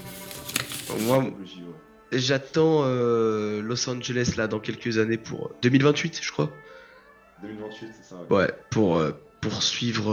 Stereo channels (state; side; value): identical; both; correlation 1.00